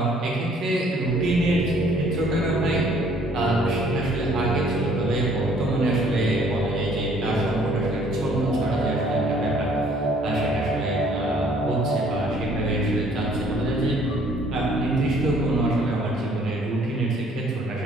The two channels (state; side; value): normal; both; correlation 0.60